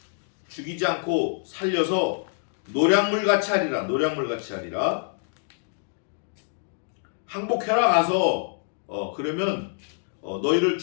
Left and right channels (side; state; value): right; silent; digital silence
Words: 죽이지 않고 살려서 노량물 같이 하리라. 노량물 같이 하리라. 항복해라 가서 그러면 너희를